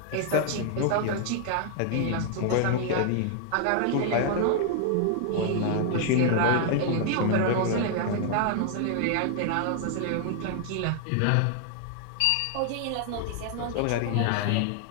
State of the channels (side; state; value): both; different; correlation 0.00